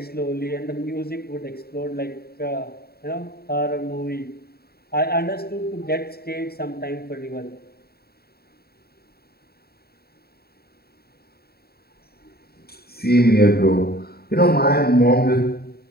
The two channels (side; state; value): right; late; 0.45 ms